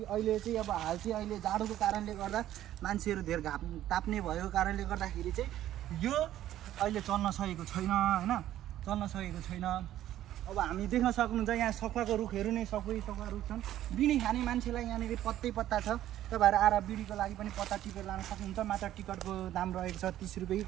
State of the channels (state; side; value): quieter; left; 12.8 dB